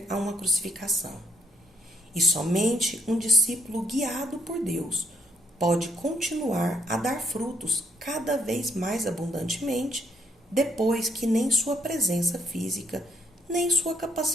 a uma crucificação, e somente um discípulo guiado por Deus pode continuar a dar frutos cada vez mais abundantemente depois que nem sua presença física nem sua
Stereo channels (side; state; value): both; normal; correlation 0.71